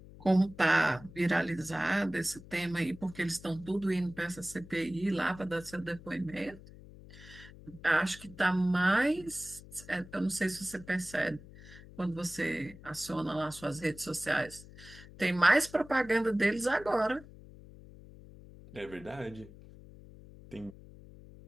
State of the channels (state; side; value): noise; left; hum, 18 dB below the sound